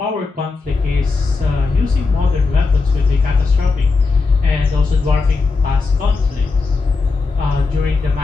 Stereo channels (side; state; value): right; quieter; 4.1 dB